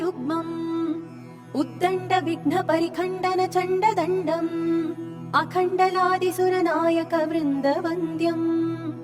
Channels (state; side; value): identical; both; correlation 1.00